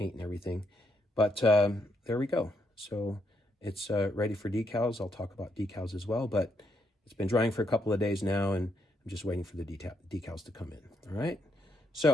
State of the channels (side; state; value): both; normal; correlation 0.77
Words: and everything. But there we go. So it's ready for decals. I'll talk about decals as well, but it's been drying for a couple of days now, and I'm just waiting for the decals to come in. All right.